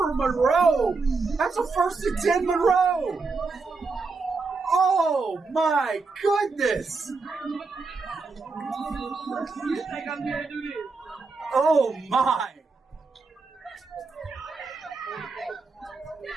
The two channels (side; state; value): left; quieter; 4.2 dB